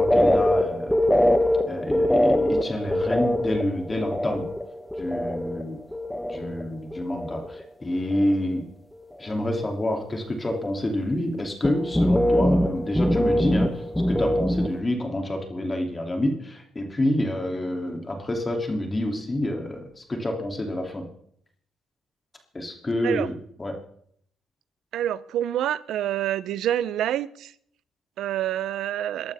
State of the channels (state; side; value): normal; both; correlation 0.90